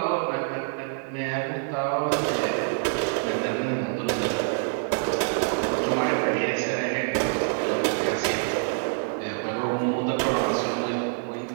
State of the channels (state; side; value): silent; left; digital silence